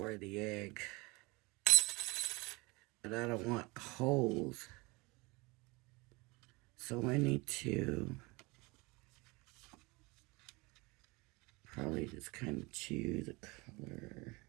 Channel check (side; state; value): left; quieter; 25.2 dB